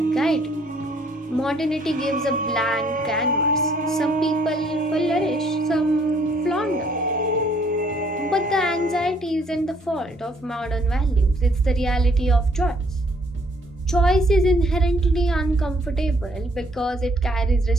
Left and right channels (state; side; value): normal; both; correlation 0.64